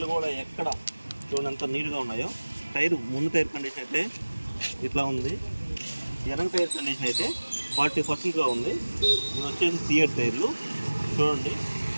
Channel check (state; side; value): inverted; both; correlation -1.00